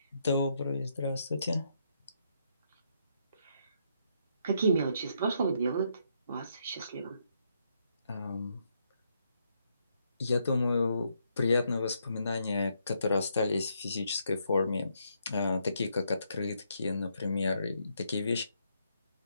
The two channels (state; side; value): inverted; both; correlation -0.76